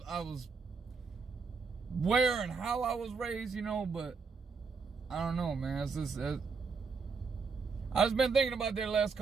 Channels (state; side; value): quieter; left; 5.0 dB